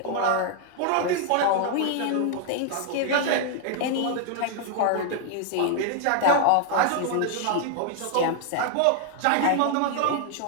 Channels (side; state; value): both; different; correlation 0.00